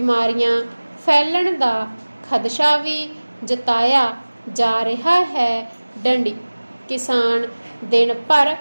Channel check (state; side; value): inverted; both; correlation -1.00